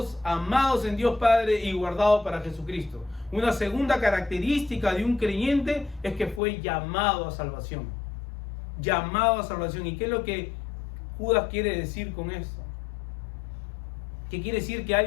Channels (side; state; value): right; drops out; at 6.4 s